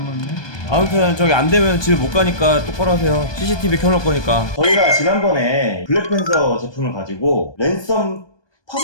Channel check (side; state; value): right; late; 1.2 ms